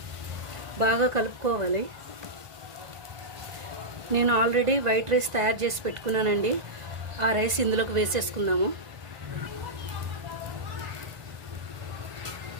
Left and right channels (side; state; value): left; late; 1.5 ms